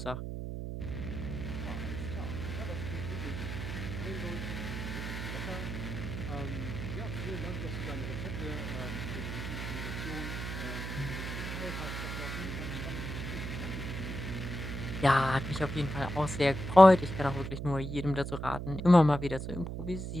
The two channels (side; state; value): right; noise; hum, 5 dB below the sound